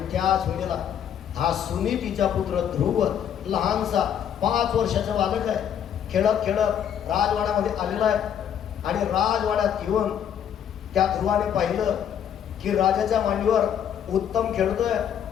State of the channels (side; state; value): right; quieter; 9.1 dB